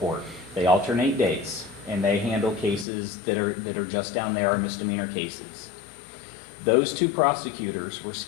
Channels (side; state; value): right; drops out; at 2.9 s